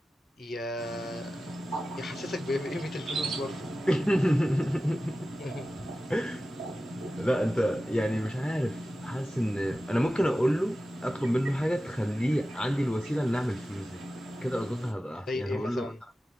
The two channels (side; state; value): both; normal; correlation 0.94